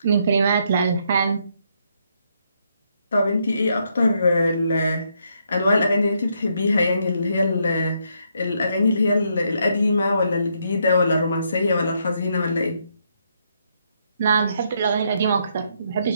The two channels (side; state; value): both; inverted; correlation -0.76